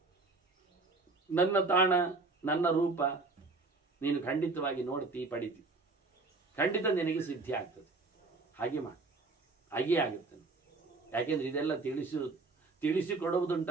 ನನ್ನ ತಾಣ, ನನ್ನ ರೂಪ ನೀನು ಖಂಡಿತವಾಗಿ ನೋಡ್ತಿ, ಪಡಿತಿ, ಖಂಡಿತ ನಿನಗೆ ಸಿದ್ಧಿ ಆಗ್ತದೆ. ಹಾಗೆ ಮಾಡಿ, ಹಾಗೇ ಆಗುತ್ತೆ. ಯಾಕೆಂದ್ರೆ ಇದೆಲ್ಲ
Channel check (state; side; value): quieter; left; 3.6 dB